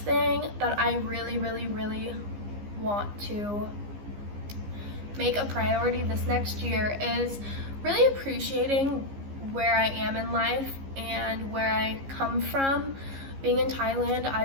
that I really want to make a priority this next year is really appreciating where I am in life and where I come from. Being in Thailand,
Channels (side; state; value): left; late; 15 ms